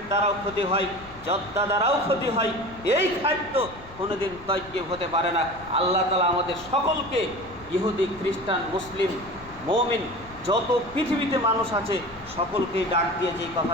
দ্বারাও ক্ষতি হয়, জর্দা দ্বারাও ক্ষতি হয়, এই খাদ্য কোনোদিন তয়্যিব হতে পারে না। আল্লাহ তাআলা আমাদের সকলকে, ইহুদি, খ্রিস্টান, মুসলিম, মুমিন, যত পৃথিবীতে মানুষ আছে সকলকেই ডাক দিয়ে যেই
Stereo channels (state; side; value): noise; left; rumble, 19 dB below the sound